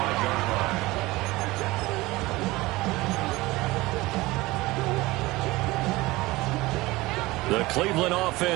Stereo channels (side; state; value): left; quieter; 20.2 dB